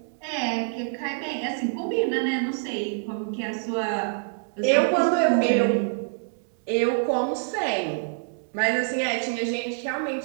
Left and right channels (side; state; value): left; silent; digital silence